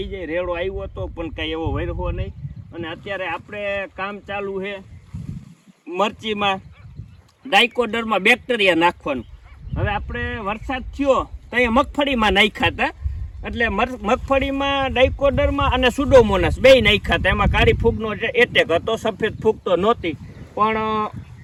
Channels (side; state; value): both; identical; correlation 1.00